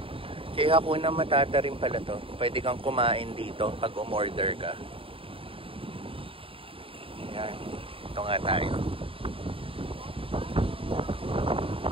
Kaya Hakuna Matata rin pala to. Pwede kang kumain dito pag umorder ka. Yan. Ito nga tayo.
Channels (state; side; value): late; left; 0.26 ms